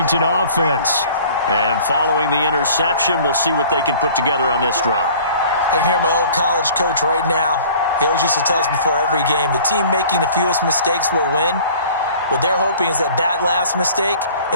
offense. And following the interception, we'll see what they can put together on this drive. I can hear my old college coach right now. He always used to tell us before every game, the team making the fewest mistakes will win. What they're hoping is that last mistake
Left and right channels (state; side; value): inverted; both; correlation -0.48